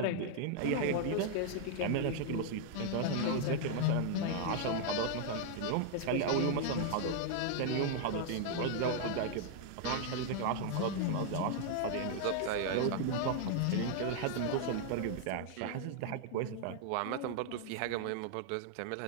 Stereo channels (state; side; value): different; both; correlation 0.00